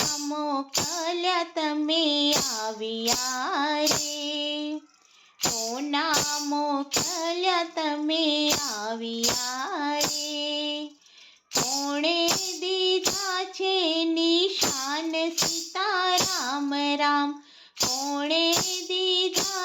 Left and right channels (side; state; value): both; identical; correlation 1.00